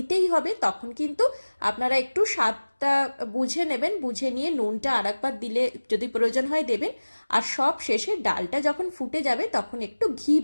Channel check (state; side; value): inverted; both; correlation -1.00